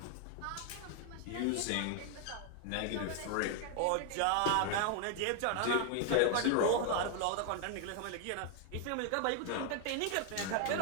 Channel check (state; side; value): different; both; correlation 0.00